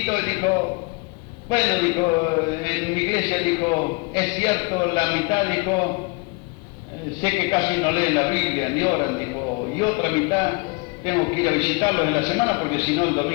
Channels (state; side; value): quieter; right; 29.5 dB